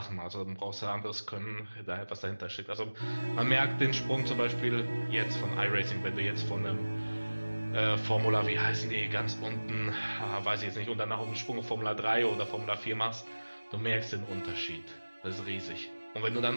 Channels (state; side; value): inverted; both; correlation -1.00